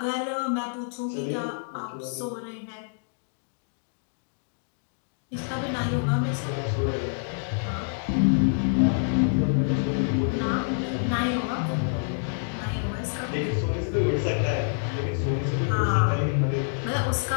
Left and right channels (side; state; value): right; silent; digital silence